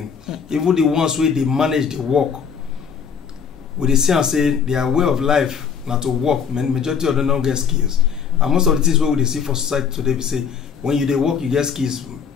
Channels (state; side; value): quieter; right; 6.9 dB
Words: Even the ones where they manage the work, we they see and say their way of life not to work. Majority of them don't get skills. And most of the things where we see for society today, we say when you they work, you get skills,